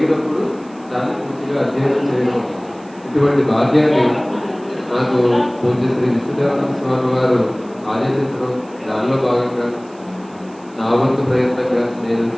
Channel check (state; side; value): noise; right; hiss, 28 dB below the sound